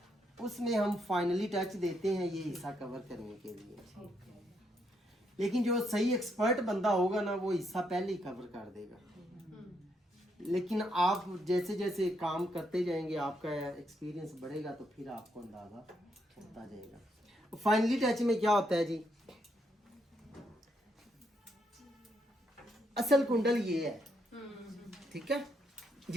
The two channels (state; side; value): normal; both; correlation 0.76